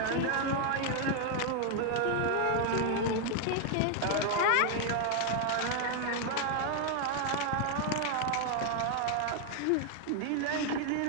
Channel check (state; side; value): different; both; correlation 0.00